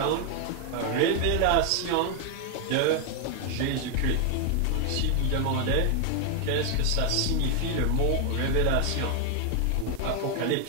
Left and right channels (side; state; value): both; different; correlation 0.01